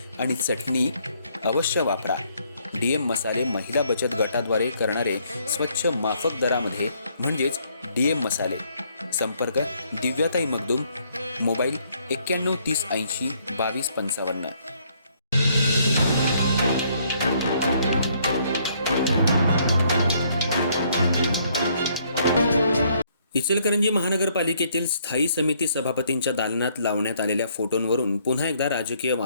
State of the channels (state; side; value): inverted; both; correlation -0.68